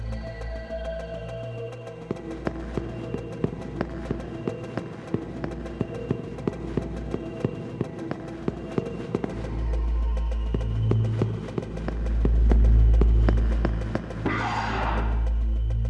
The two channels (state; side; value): identical; both; correlation 1.00